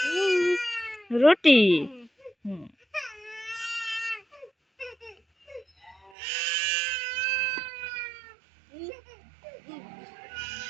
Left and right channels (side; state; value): left; drops out; at 6.1 s